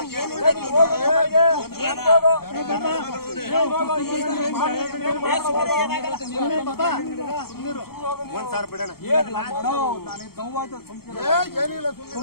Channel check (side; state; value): right; late; 0.94 ms